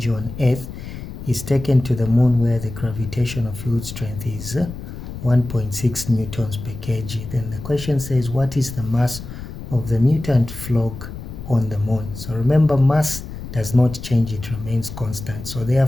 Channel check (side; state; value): left; noise; rumble, 10 dB below the sound